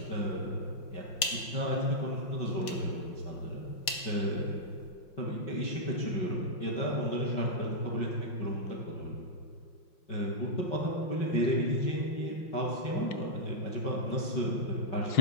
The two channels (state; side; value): late; right; 5.7 ms